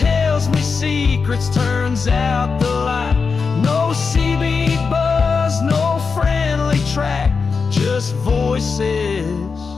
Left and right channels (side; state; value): right; quieter; 5.1 dB